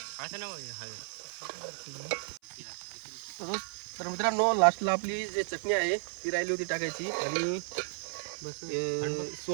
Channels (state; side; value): silent; left; 56 dB below the other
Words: बस तर मित्रांनो, लास्टला आपली जी चटणी आहे ती राहिली होती टाकायची आणि